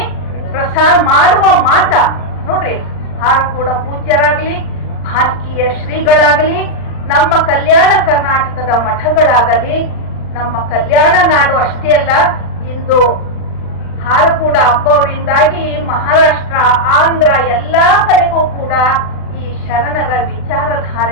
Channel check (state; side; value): late; right; 39 ms